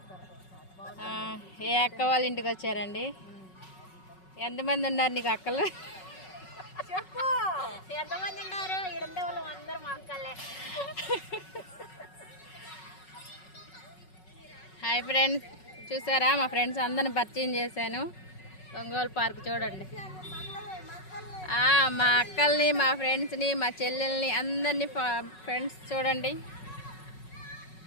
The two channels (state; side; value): late; right; 5.4 ms